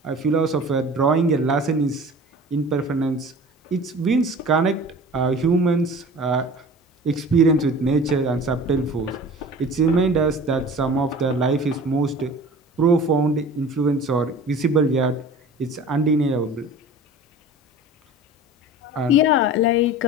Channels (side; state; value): both; normal; correlation 0.40